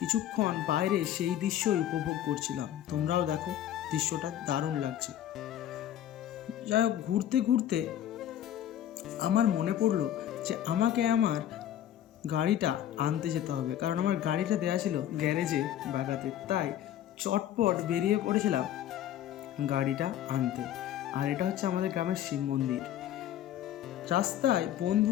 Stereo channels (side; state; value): right; quieter; 11.4 dB